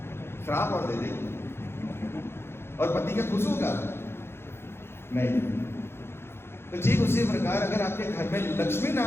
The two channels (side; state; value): right; late; 0.12 ms